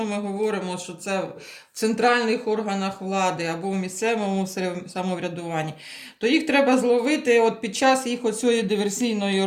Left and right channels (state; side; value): identical; both; correlation 1.00